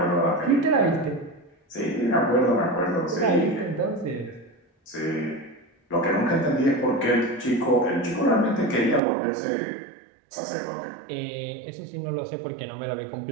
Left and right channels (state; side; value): drops out; left; at 9.0 s